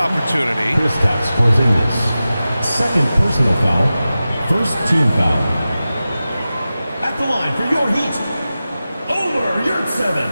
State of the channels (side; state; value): both; inverted; correlation -0.94